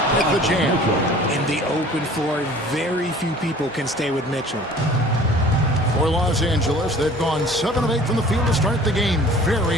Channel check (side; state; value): both; normal; correlation 0.48